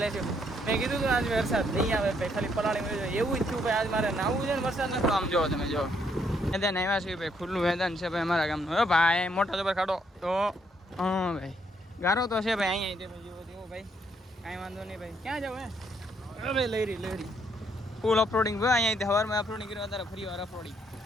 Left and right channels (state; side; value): normal; both; correlation 0.72